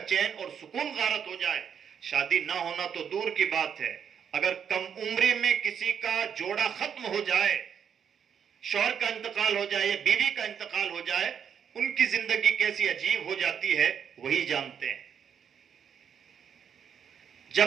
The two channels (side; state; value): left; quieter; 7.8 dB